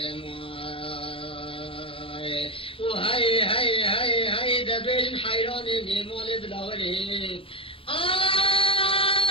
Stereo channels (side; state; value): right; late; 0.26 ms